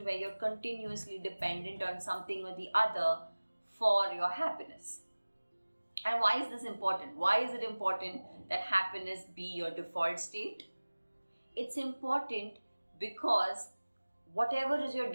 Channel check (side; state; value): both; inverted; correlation -1.00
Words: where you're continuously dependent on something or the other for your happiness. And why is this important? Why is it important that happiness be your default state? It's important because whatever is your